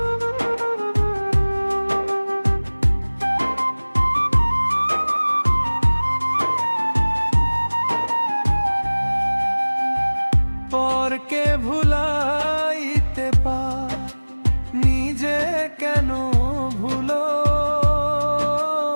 পরকে ভুলাইতে পার নিজে কেন ভুলো।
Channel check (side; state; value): both; inverted; correlation -1.00